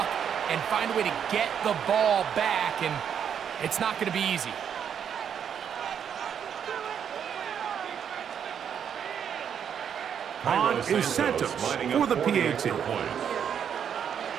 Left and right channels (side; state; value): left; quieter; 8.2 dB